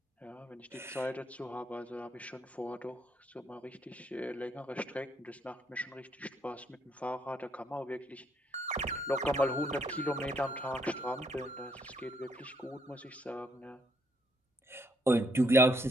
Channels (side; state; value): both; normal; correlation 0.71